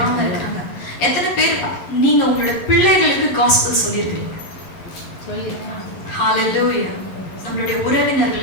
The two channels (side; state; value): right; late; 11 ms